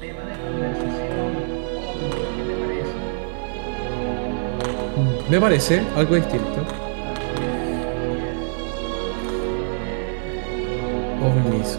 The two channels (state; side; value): silent; left; 55 dB below the other